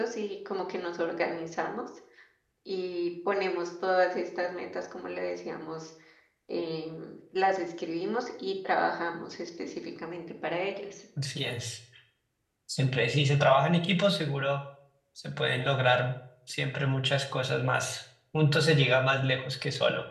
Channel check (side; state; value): both; identical; correlation 1.00